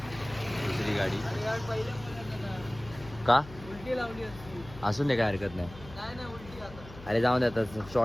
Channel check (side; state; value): left; noise; hum, 16 dB below the sound